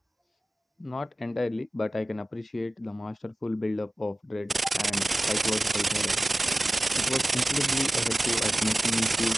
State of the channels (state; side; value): normal; both; correlation 0.95